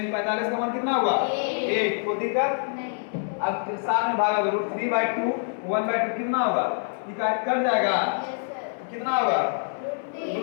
45 का मान कितना होगा 1। को दिक्कत नहीं। अब साथ में भागा दो √3/2 1/2 कितना होगा, ये कट जाएगा कितना होगा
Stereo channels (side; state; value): right; silent; digital silence